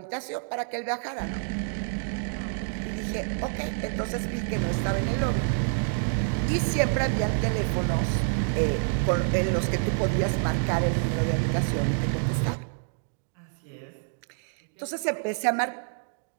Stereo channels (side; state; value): left; silent; digital silence